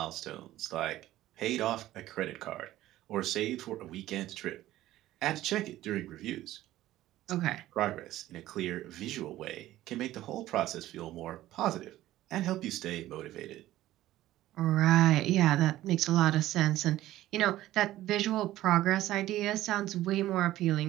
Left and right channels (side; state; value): left; quieter; 14.8 dB